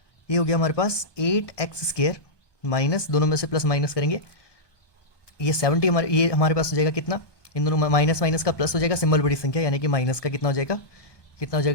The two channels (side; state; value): right; late; 1.2 ms